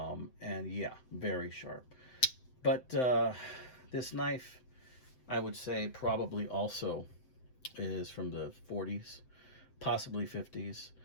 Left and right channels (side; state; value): right; late; 7.8 ms